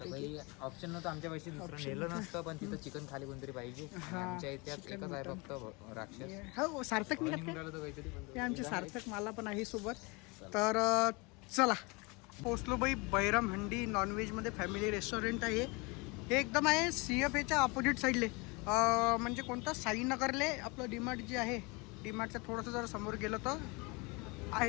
ऑप्शन नव्हतं आमच्या पैसे दुसरं नेलं नसतं, पण तिथं चिकन खाली कोणतरी पाहिजे. आमच्या इतिहास एकच आहे फक्त राक्षस. हो सार्थक हे आमचे सार्थक मला पण आहे सोबत. तर चला पोचलो भाई. बैरम हंडी नॉनव्हेजमध्ये फॅमिली रेस्टॉरंट आहे. हे एकदम आहे CFAच्या ऑपोजिट साईडले, म्हणजे कोणतं साईनगरले आपलं डीमार्ट जे आहे, डीमार्टच्या थोडंसं जर समोर गेलं तर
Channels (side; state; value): right; quieter; 27.7 dB